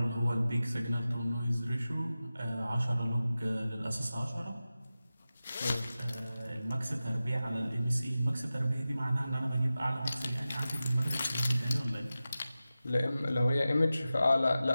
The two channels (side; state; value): both; inverted; correlation -0.95